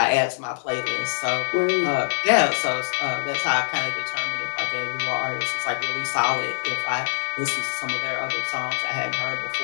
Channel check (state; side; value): silent; right; 55 dB below the other